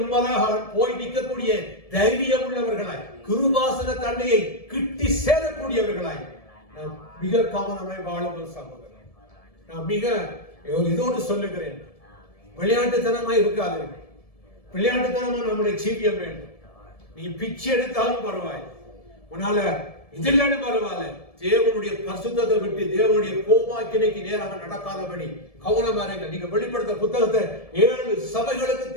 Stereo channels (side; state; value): right; late; 1.7 ms